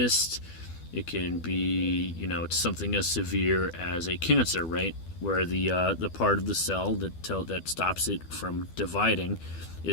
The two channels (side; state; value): right; late; 12 ms